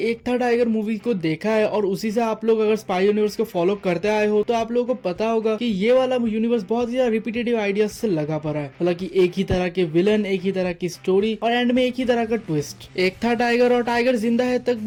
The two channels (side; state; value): both; identical; correlation 1.00